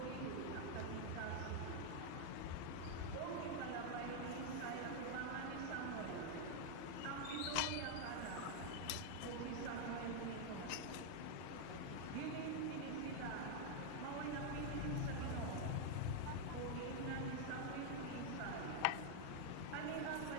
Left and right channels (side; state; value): both; different; correlation 0.00